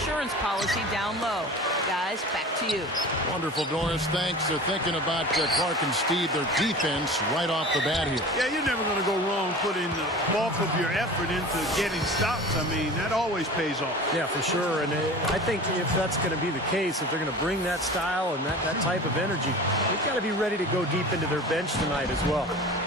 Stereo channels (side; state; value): both; normal; correlation 0.37